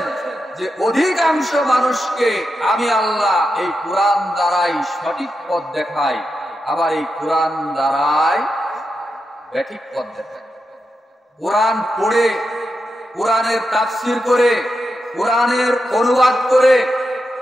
যে অধিকাংশ মানুষকে আমি আল্লাহ এই কোরআন দ্বারাই সঠিক পথ দেখাই, আবার এই কোরআন দ্বারাই ব্যাঠিক পথ দেখাই। কোরআন পড়ে, কোরআনের তাফসীর করে, কোরআনের অনুবাদ করে,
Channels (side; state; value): both; normal; correlation 0.87